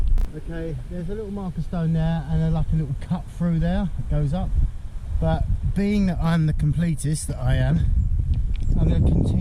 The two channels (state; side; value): identical; both; correlation 1.00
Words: Okay, there's a little marker stone there and like a little cut through there that goes up, but being that I'm the completist that I am, I'm going to